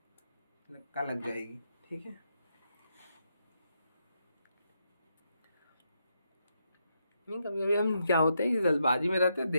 का लग जाएगी। ठीक है, नहीं कभी कभी हम क्या होते हैं कि जल्दबाजी में रहते हैं,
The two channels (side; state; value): both; inverted; correlation -0.81